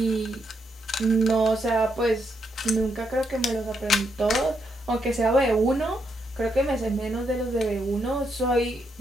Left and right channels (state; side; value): normal; both; correlation 0.79